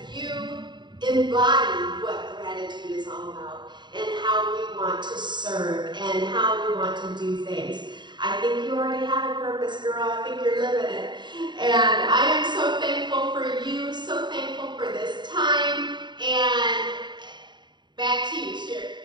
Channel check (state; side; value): late; left; 0.22 ms